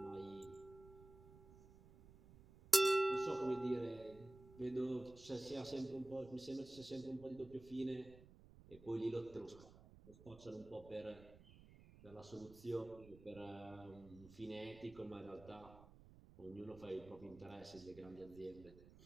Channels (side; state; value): right; noise; rumble, 19 dB below the sound